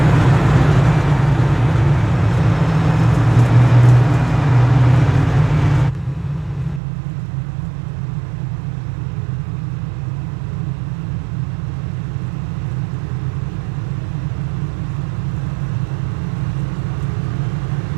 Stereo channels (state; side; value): drops out; left; at 6.8 s